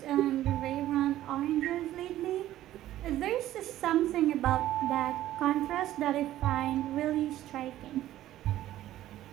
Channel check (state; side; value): quieter; left; 13.8 dB